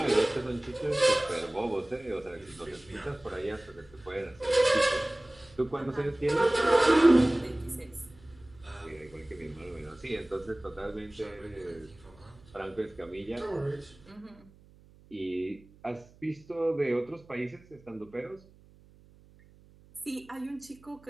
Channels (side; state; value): right; noise; hum, 26 dB below the sound